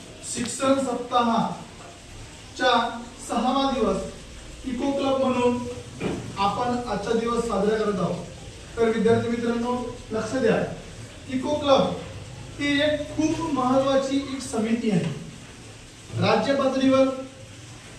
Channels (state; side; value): identical; both; correlation 1.00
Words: शिक्षण सप्ताहाच्या 6वा दिवस इको क्लब म्हणून आपण आजचा दिवस साजरा करत आहोत। तर विद्यार्थी मित्रांनो लक्ष द्या, इको क्लब ही एक खूप महत्त्वाची एक समिती आहे। राज्य पातळीवर